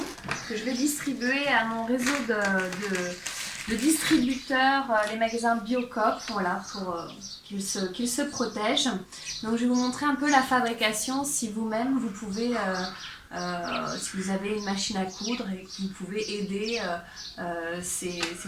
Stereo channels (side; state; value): both; identical; correlation 1.00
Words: que je vais distribuer à mon réseau de distributeurs, les magasins Biocoop, voilà, pour qu'ils se protègent. Donc je vais vous montrer un peu la fabrication, si vous-même vous pouvez, si vous avez une machine à coudre et que vous pouvez aider, c'est